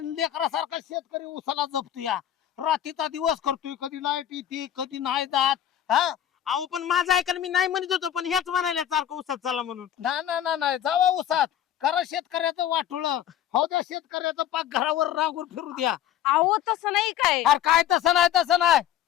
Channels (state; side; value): quieter; right; 10.9 dB